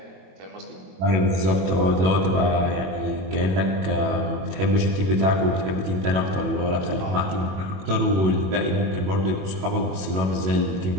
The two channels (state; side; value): late; left; 21 ms